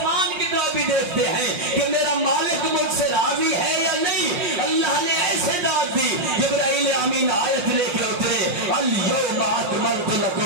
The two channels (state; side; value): late; left; 5.6 ms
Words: کی طرف بھی دیکھتے ہیں کہ میرا مالک مجھ سے راضی ہے یا نہیں۔ اللہ نے ایسے داد دی، جبرائیل امین آیت لے کے اترے، الیوم اکملت